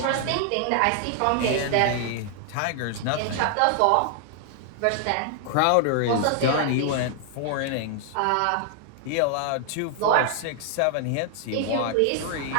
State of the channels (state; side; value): different; both; correlation 0.00